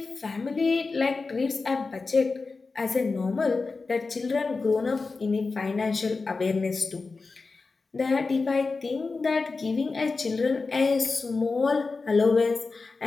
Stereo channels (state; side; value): quieter; right; 4.1 dB